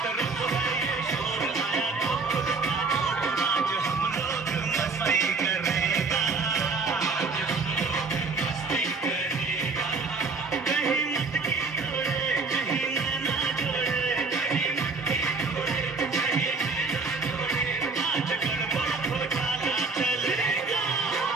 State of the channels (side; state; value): left; quieter; 4.2 dB